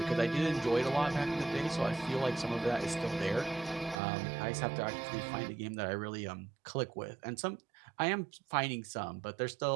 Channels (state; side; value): drops out; left; at 4.0 s